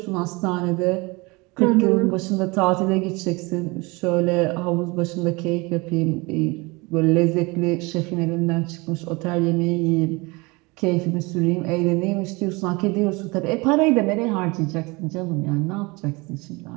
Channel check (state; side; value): quieter; left; 25.5 dB